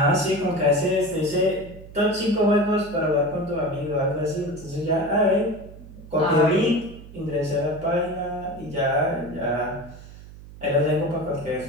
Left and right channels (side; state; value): right; noise; hum, 17 dB below the sound